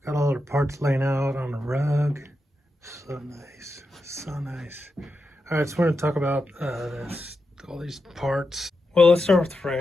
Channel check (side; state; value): both; normal; correlation 0.88